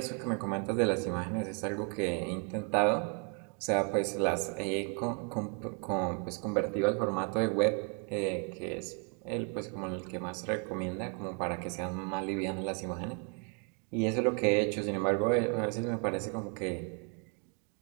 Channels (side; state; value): left; quieter; 38.8 dB